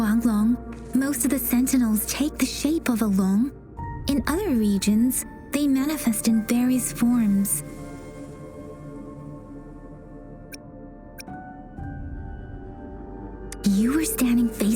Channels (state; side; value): identical; both; correlation 1.00